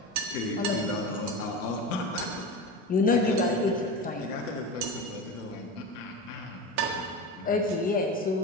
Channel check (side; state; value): both; normal; correlation 0.25